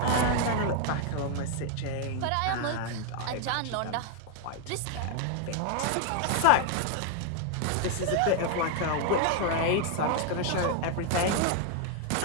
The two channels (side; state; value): both; different; correlation 0.00